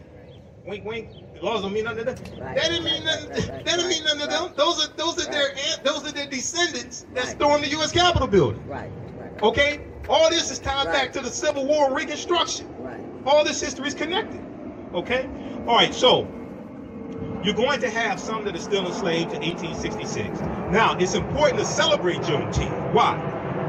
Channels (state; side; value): identical; both; correlation 1.00